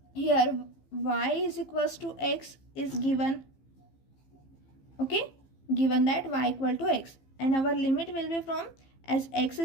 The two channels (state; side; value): late; right; 15 ms